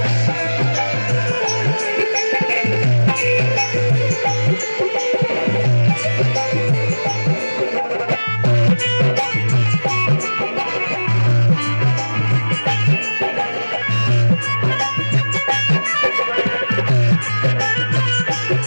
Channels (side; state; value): both; inverted; correlation -1.00